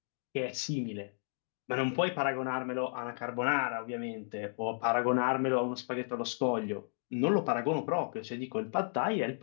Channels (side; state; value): right; silent; digital silence